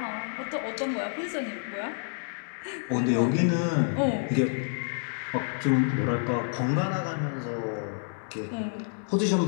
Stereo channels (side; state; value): right; silent; digital silence